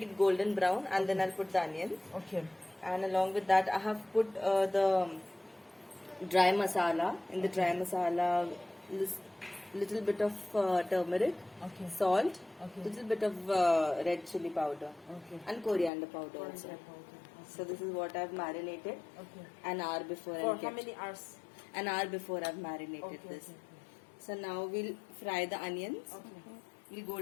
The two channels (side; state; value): right; drops out; at 15.9 s